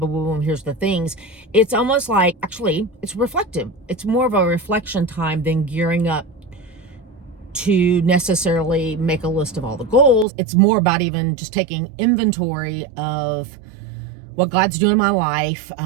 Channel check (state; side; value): drops out; left; at 10.2 s